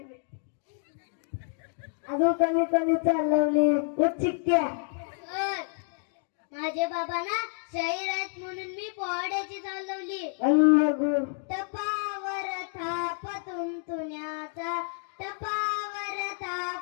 अजून कोणी कोणी चाल लावली? उठ चिक्क्या. सर, माझे बाबा ना शाहीर आहेत म्हणून मी पोवाड्याची चाल लावली. पण बघू. तपावर थाप तुमतुण्याचा, तपावर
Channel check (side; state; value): right; silent; 59 dB below the other